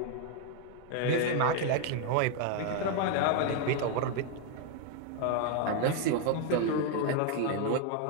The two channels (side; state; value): both; different; correlation 0.01